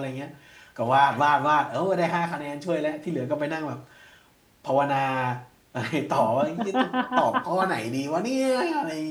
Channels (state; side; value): identical; both; correlation 1.00